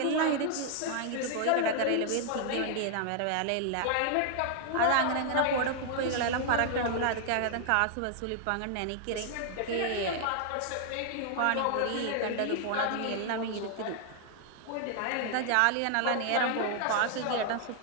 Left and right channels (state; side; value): different; both; correlation 0.00